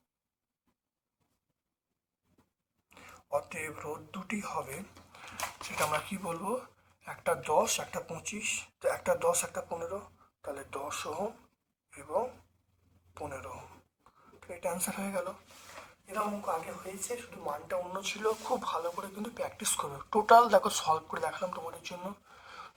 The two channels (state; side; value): identical; both; correlation 1.00